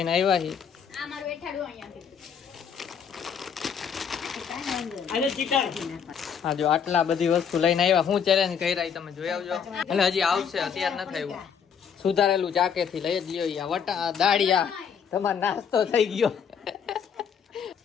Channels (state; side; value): quieter; right; 7.3 dB